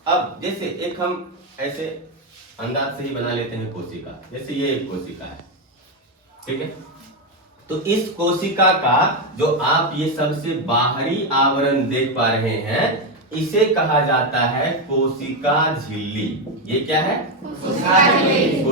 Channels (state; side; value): normal; both; correlation 0.08